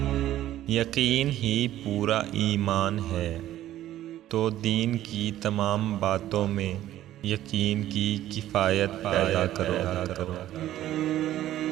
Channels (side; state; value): left; quieter; 13.3 dB